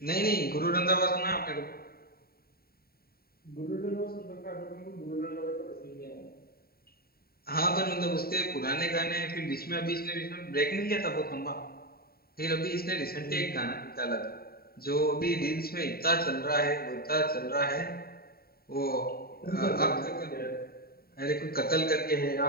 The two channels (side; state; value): right; late; 0.44 ms